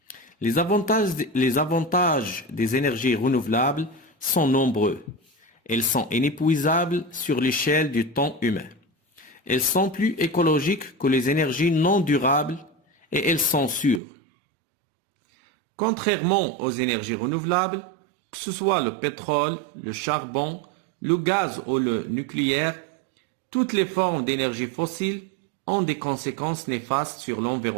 Les avantages des énergies renouvelables sont nombreux. Elles sont inépuisables sur l'échelle du temps humain. Elles sont plus écologiques que les énergies non durables et elles sont sûres. Contrairement aux énergies renouvelables, que ce soit le pétrole, le charbon, le gaz ou le nucléaire, toutes les formes d'énergie fossile ont des conséquences néfastes sur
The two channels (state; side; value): drops out; left; at 14.0 s